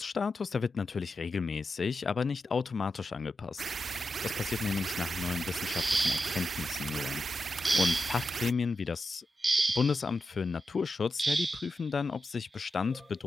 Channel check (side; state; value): both; normal; correlation 0.89